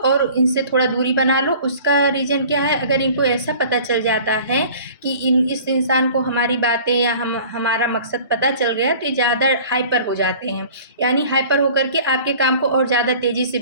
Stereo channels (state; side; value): inverted; both; correlation -0.46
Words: इनसे थोड़ा दूरी बना लो। उसका रीज़न क्या है, अगर इनको ऐसा पता चल जाता है कि इस इंसान को हमारी बातें या हमारा मकसद पता चल गया, तो ये ज़्यादा हाइपर हो जाते हैं, यानी हाइपर होकर के आपके काम को और ज़्यादा तेज़ी से